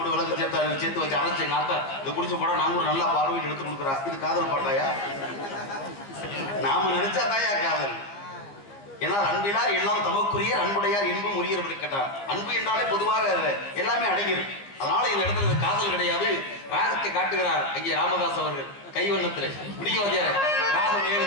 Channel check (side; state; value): right; late; 15 ms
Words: விளக்கு சேர்த்து வச்சு அரைச்சு எங்க ஆத்தா இதை குடிச்சு போட நாங்க ஒரு நல்லா பார்வையில் எடுத்து கொடுக்குறா. இது காதல் பாட்டாயா? நாம நினைச்சா தாயா காதல். ஏன்னா அன்பிலார் எல்லாம் தமக்குரிய, அன்புடையார் என்பும் உரியவர் கேட்டார். அன்பு என்றாலே பொதுவாக எல்லாமே அடங்கிடும். அதனால இந்த இடத்துல காதல் கிடையாது. ராகத்தை காட்டுகிறார் ஐயா ராமதாஸ் அவர்கள் கைவண்ணத்தில். பிடிக்கவாதியார் ராகம்